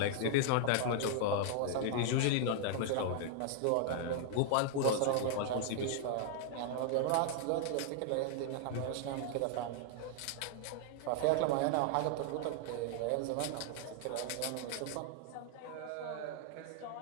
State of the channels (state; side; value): different; both; correlation -0.01